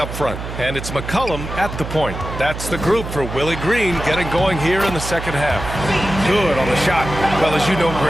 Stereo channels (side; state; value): right; noise; hum, 8 dB below the sound